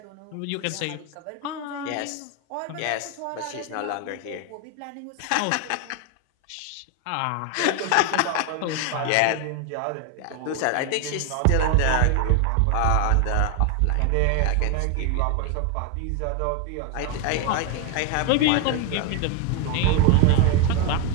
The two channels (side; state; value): both; different; correlation 0.01